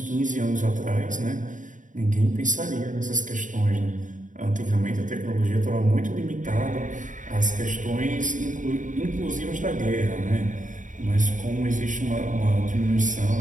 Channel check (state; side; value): late; left; 0.37 ms